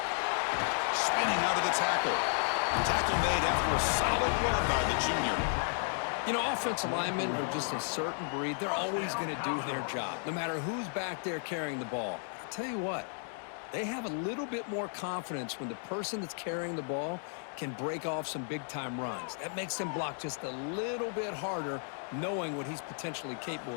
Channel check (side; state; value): right; silent; 55 dB below the other